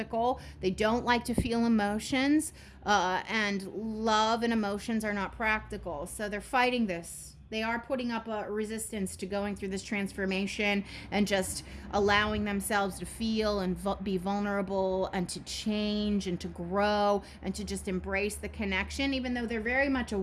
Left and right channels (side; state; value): both; identical; correlation 1.00